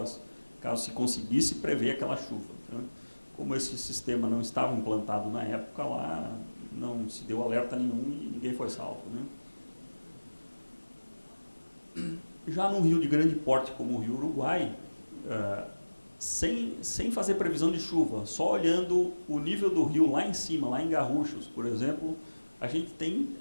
caso se conseguisse prever aquela chuva, né? Como esse sistema não estava implantado na época lá, não se deu alerta nenhum e ninguém foi salvo, né? Já num rio de grande porte como o Rio Uruguai, sem fazer previsão de chuva, só olhando o nível do rio lá em cima, lá em Garruchos, por exemplo, a gente tem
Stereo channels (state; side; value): inverted; both; correlation -1.00